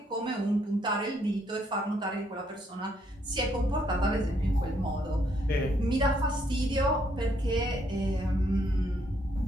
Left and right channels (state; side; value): normal; both; correlation 0.71